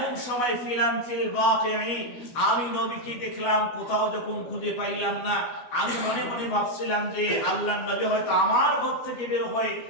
সময় ফিলাম ফিল বাকিঈ, আমি নবীকে দেখলাম কোথাও যখন খুঁজে পাইলাম না, আমি মনে মনে ভাবছিলাম যে আল্লাহর নবী হয়তো আমার ঘর থেকে বের হয়ে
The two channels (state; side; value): late; right; 12 ms